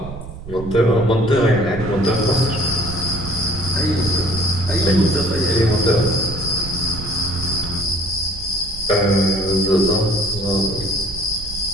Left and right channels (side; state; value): right; noise; rumble, 12 dB below the sound